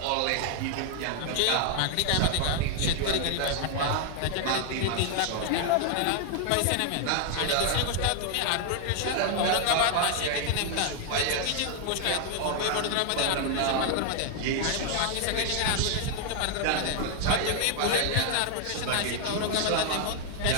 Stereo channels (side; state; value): both; different; correlation 0.00